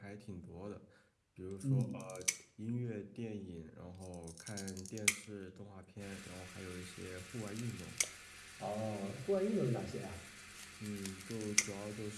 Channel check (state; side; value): identical; both; correlation 1.00